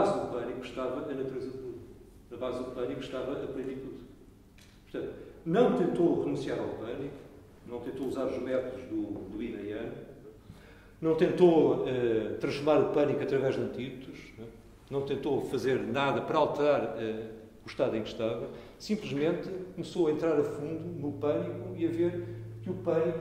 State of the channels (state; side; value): identical; both; correlation 1.00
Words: do pânico, estava a natureza de Buda. Na base do pânico estava a plenitude. Portanto, não tentou renunciar ao pânico, não tentou usar os métodos do Yin e Yang, não tentou transformar o pânico através de antídotos, não tentou fazer nada para alterar o estado em que estava, simplesmente começou a entrar a fundo no pânico e a ver que o